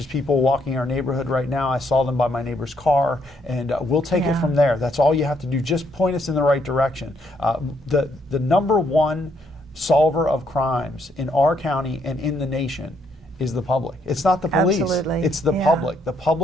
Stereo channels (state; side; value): normal; both; correlation 0.72